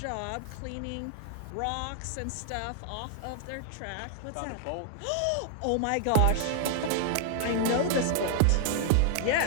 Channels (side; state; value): both; different; correlation -0.01